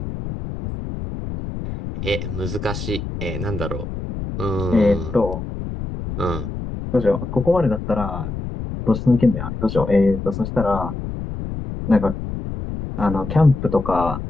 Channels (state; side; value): noise; left; rumble, 6 dB below the sound